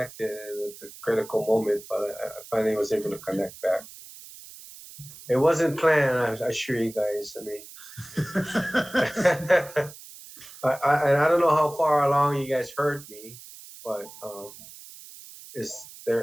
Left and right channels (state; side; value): noise; right; hiss, 17 dB below the sound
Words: at the critical moment, but I finally was able to connect back. It wasn't planned, I assure you guys. I mean, I don't know how far along you guys heard me, but is